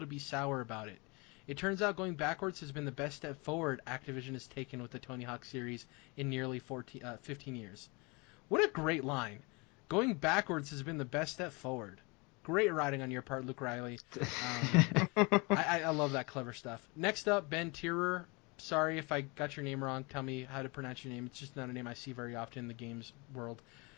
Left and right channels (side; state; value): right; quieter; 28.3 dB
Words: to be sour about it. It turns out going backwards has been the best step forward Activision has taken with the Tony Hawk series in nearly 15 years." What a great line. Going backwards has been the best step forward. Great writing on your part, Luke Riley. I love that clever stuff. Next up, Ben Tierer. Sorry if I got your name wrong. Tell me how to pronounce your name. It's just not a name I see very often in the games world.